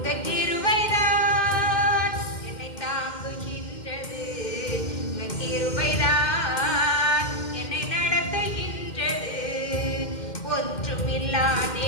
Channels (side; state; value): right; late; 2.1 ms